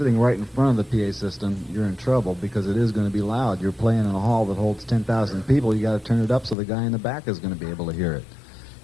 right in front of the PA system, you're in trouble because it is going to be loud. You're playing in a hall that holds 10,000 people. You got to turn it up so the guy in the back is going to be able to hear it.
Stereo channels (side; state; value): right; drops out; at 6.6 s